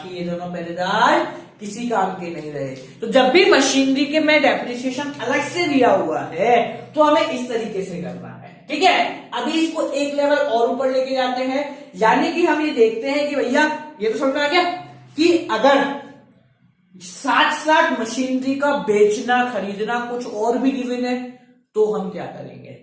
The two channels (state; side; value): identical; both; correlation 1.00